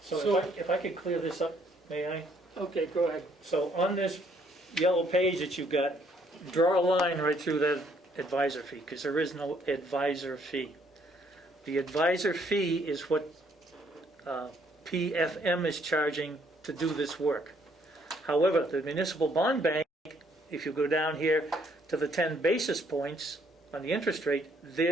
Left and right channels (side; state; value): both; normal; correlation 0.67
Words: So if I could clear this up, may I? Okay, go ahead. So on this yellow page that you've got, draw a line right through that advisor fee, because there is no advisor fee. The advisor fee is what PFM is charging to do this work. However, the municipal bond bank, if you go down here to the 10 basis points on the interest rate,